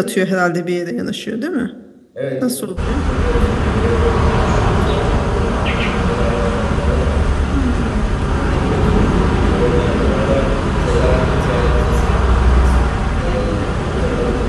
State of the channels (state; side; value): identical; both; correlation 1.00